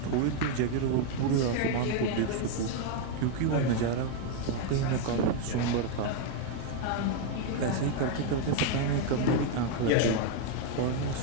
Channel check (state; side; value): different; both; correlation 0.01